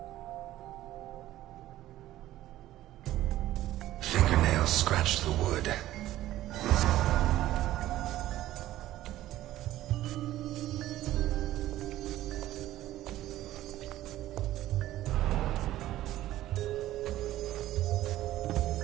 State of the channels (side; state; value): left; quieter; 14.5 dB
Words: Fingernails scratched the wood.